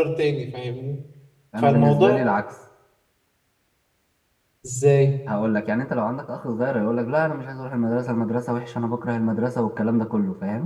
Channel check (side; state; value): both; identical; correlation 1.00